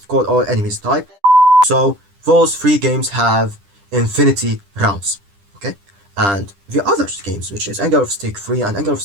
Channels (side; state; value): left; late; 10 ms